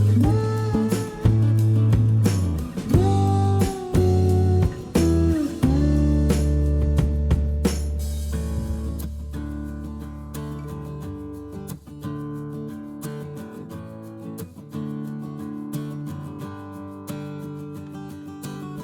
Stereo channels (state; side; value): identical; both; correlation 1.00